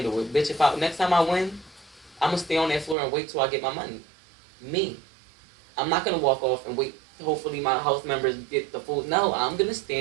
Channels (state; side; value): drops out; left; at 3.0 s